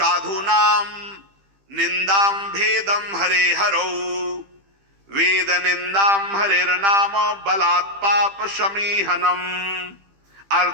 निंदाम भेदम हरे हरौ, वेद निंदाम हरेर्नाम बलात् पाप समीहनम,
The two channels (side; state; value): left; late; 15 ms